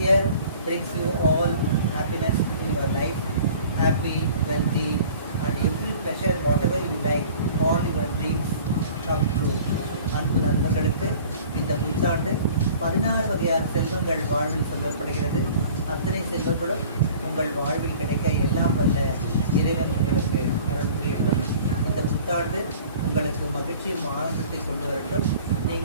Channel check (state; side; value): inverted; both; correlation -0.47